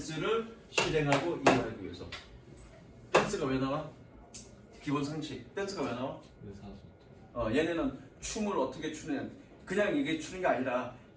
실행하고 이해하기 위해서. 댄스가 왜 나와? 기본 상식. 댄스가 왜 나와? 의사소통. 얘네는 춤을 어떻게 추느냐. 그냥 이게 추는 게 아니라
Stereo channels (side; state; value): both; identical; correlation 1.00